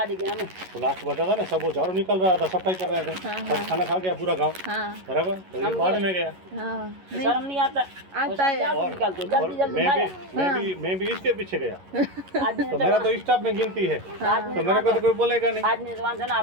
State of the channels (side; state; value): left; late; 11 ms